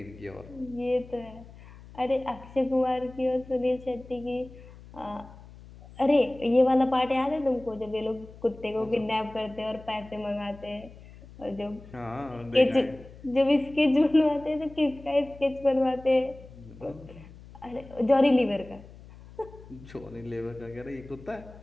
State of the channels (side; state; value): left; noise; hum, 19 dB below the sound